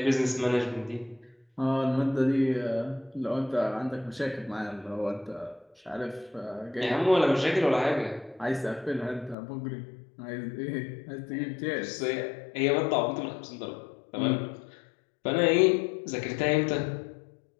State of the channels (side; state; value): right; drops out; at 9.3 s